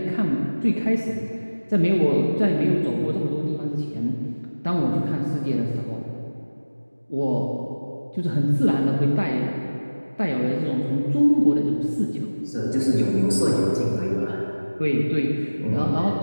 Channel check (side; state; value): both; inverted; correlation -1.00